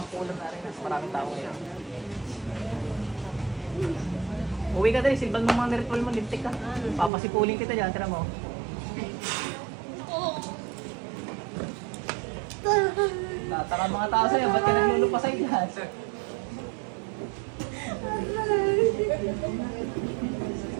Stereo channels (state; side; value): drops out; left; at 7.1 s